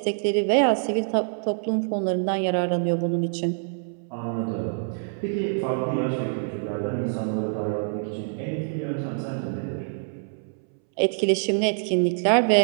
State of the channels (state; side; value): silent; left; 61 dB below the other